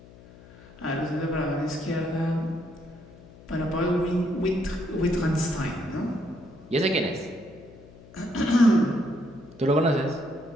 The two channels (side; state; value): left; noise; hum, 21 dB below the sound